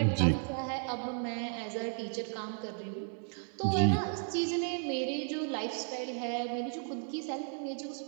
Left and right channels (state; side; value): silent; left; 55 dB below the other